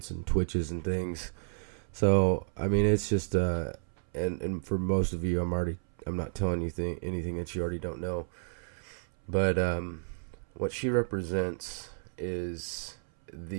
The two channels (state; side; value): silent; left; 57 dB below the other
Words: and twitches and things. So I mean, it's just and for most of you, I'm not telling you anything that you already don't know. But what she represents is